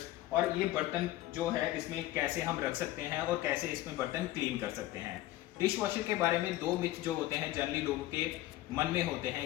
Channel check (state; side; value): quieter; right; 15.9 dB